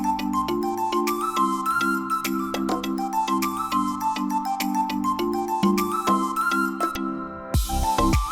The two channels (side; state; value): both; identical; correlation 1.00